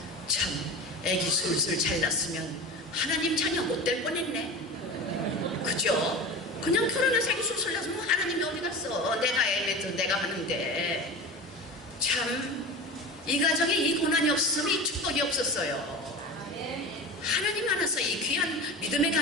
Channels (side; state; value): both; normal; correlation 0.30